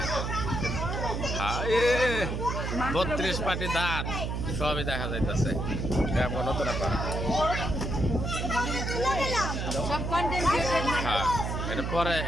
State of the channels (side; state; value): right; noise; hum, 2 dB below the sound